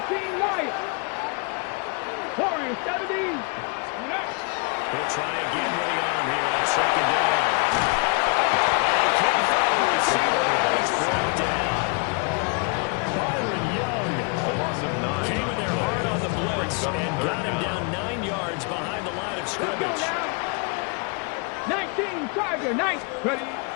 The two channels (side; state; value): right; quieter; 33.4 dB